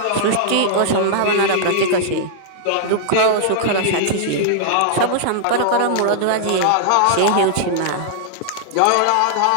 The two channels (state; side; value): different; both; correlation -0.01